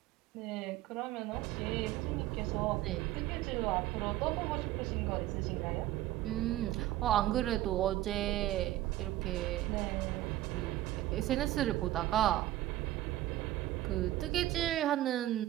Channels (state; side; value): quieter; left; 15.1 dB